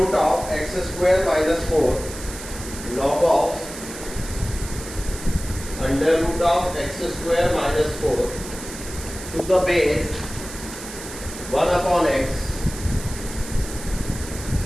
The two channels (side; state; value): right; noise; hiss, 12 dB below the sound